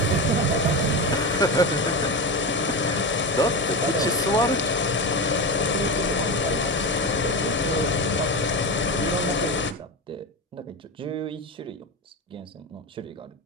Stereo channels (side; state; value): both; normal; correlation 0.20